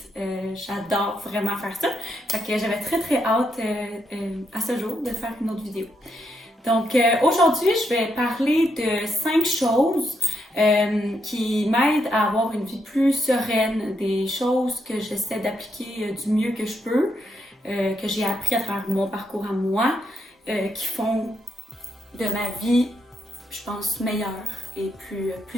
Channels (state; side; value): normal; both; correlation 0.79